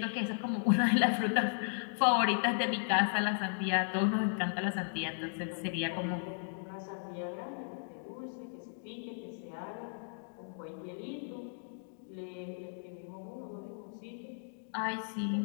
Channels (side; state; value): right; silent; digital silence